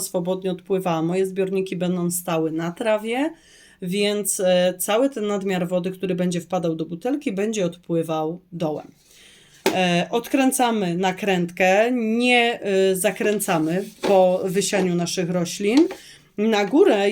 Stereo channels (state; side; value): identical; both; correlation 1.00